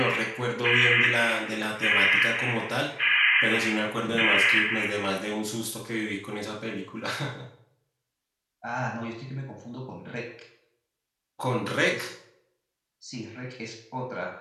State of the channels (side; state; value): both; identical; correlation 1.00